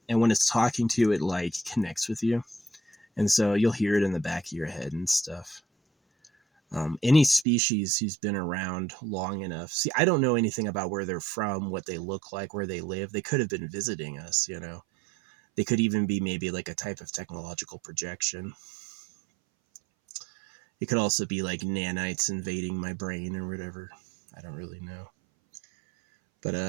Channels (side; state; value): left; drops out; at 7.5 s